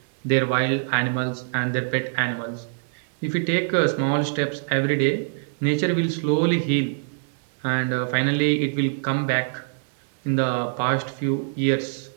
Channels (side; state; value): left; silent; 58 dB below the other